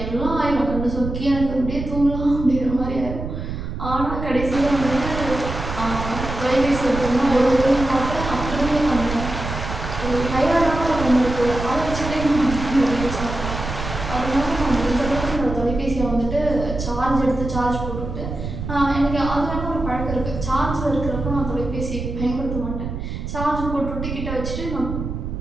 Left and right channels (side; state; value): right; noise; rumble, 6 dB below the sound